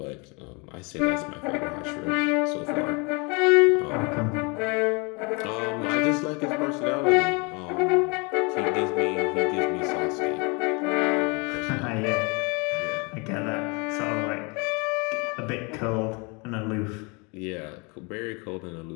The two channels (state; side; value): quieter; right; 30.5 dB